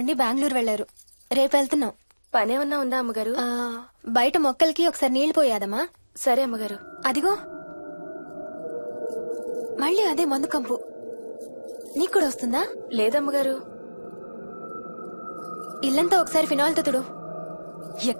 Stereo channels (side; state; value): both; inverted; correlation -1.00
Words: బెంగళూరు వెళ్లారు. రేపు వెళ్తున్నాం. పనేమన్నా ఉందా అమ్మగారు? బయట మొక్కలకి ఒకసారి నీళ్లు పోయాదమ్మా. సరే అమ్మగారు. అదిగో మళ్ళీ అదే మందు కంపు. నీకు కూడా వస్తుందా? లేదమ్మగారు. ఇల్లంతా ఒకసారి ఫినాయిల్ తో తుడు.